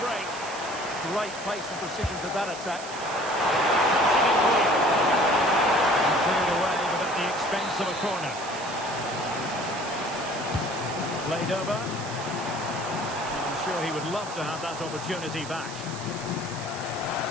Great pace and precision to that attack. Cleared away, but at the expense of a corner. Played over. I'm sure he would love to have that opportunity back.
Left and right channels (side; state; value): right; noise; hiss, 13 dB below the sound